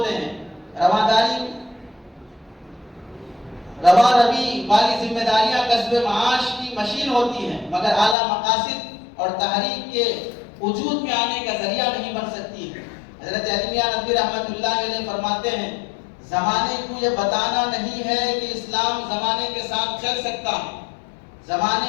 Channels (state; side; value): drops out; right; at 8.2 s